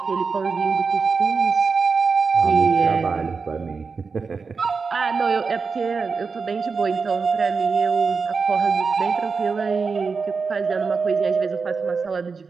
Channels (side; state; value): left; quieter; 4.9 dB